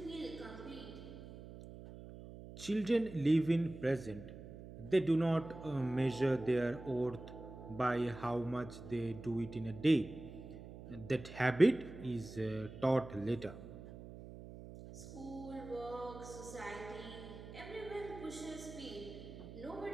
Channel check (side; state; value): right; noise; hum, 13 dB below the sound